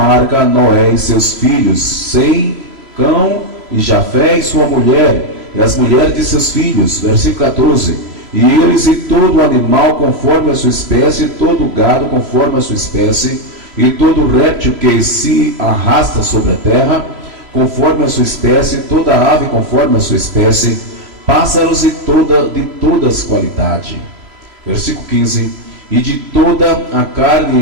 Noé e seus filhos, Sem, Cão e Jafé e sua mulher, e as mulheres de seus filhos. Versículo 14: e eles e todo animal conforme a sua espécie, todo gado conforme a sua espécie, e todo réptil que se arrasta sobre a terra conforme a sua espécie, toda ave conforme a sua espécie, pássaros de todas qualidade. Versículo 15: e de toda a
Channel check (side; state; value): left; late; 3.0 ms